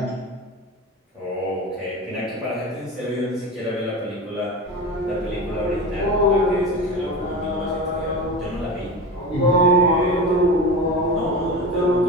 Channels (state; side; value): normal; both; correlation 0.27